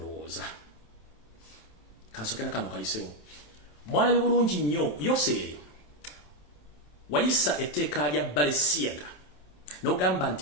mwalabe bulungi nnyo Yoseeri wayisa etteeka lya Balesiyaga n'ogamba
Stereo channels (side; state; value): right; late; 27 ms